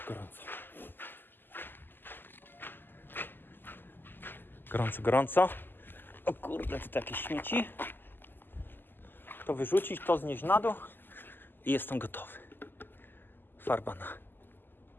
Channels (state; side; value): late; right; 0.093 ms